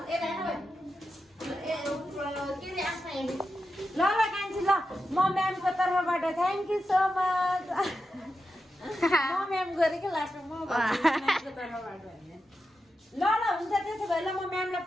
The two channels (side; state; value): both; normal; correlation 0.89